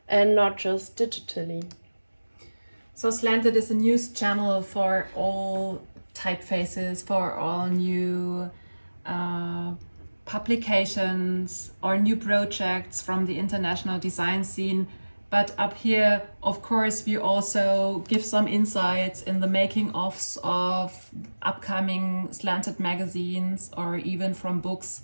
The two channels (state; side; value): inverted; both; correlation -1.00